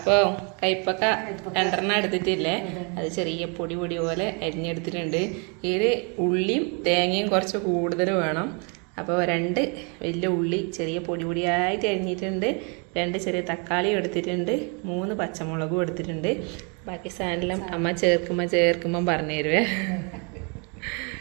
കൈപ്പക്ക 2 എടുത്തിട്ടില്ലേ, അത് ചെറിയ പൊടി പൊടി പോലെ അരിഞ്ഞെടുത്തിട്ടുണ്ട്. ഇതിൽ ഉള്ളിയും തേങ്ങയും കുറച്ച് കൂടുതൽ വേണം. അപ്പോൾ 2 വലിയ ഉള്ളി ചെറിയ പൊടി പൊടിയായിട്ട് അരിഞ്ഞിട്ടുണ്ട്. 2 ചെറിയ തക്കാളി എടുത്തിട്ടുണ്ട്. 3 പച്ചമുളകും എടുത്തിട്ടുണ്ട്. ബാക്കി സാധനം അമ്മ ചേർക്കുമ്പോൾ പറഞ്ഞു തരുവേ.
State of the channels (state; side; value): quieter; left; 35.0 dB